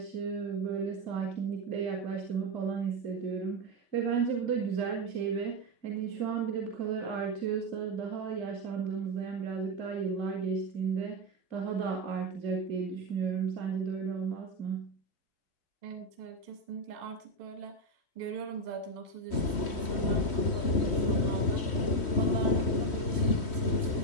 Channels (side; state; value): right; late; 3.1 ms